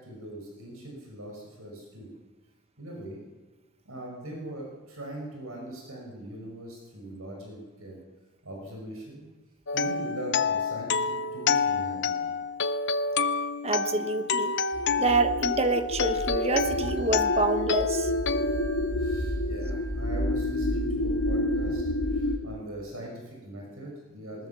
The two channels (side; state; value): both; normal; correlation -0.07